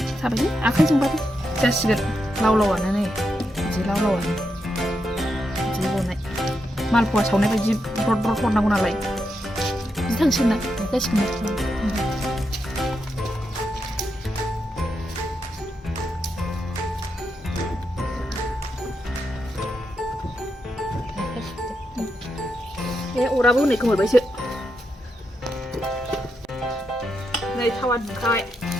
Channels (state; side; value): normal; both; correlation 0.84